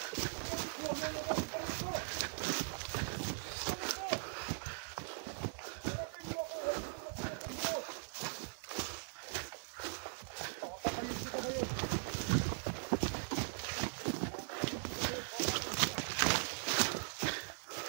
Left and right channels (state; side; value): silent; left; digital silence